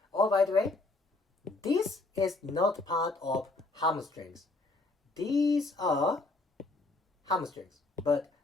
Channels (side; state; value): right; quieter; 3.2 dB